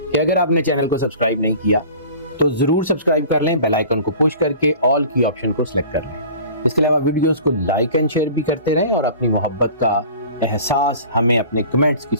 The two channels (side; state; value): both; inverted; correlation -0.42